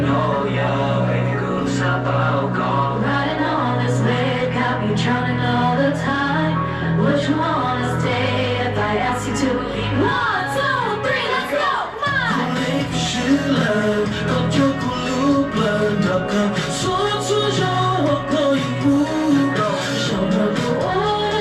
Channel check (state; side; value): identical; both; correlation 1.00